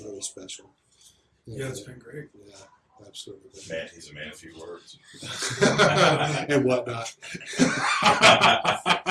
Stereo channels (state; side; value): identical; both; correlation 1.00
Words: really special. Yeah, it's been great. Yeah, absolutely. Man, he's a man of few words. And whatnot.